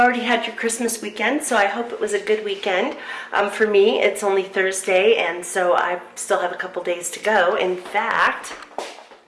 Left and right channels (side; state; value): both; identical; correlation 1.00